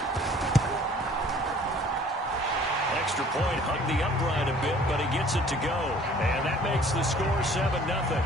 Extra point hugged the upright a bit, but he gets it to go. And that makes the score 7-0.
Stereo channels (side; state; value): both; normal; correlation 0.53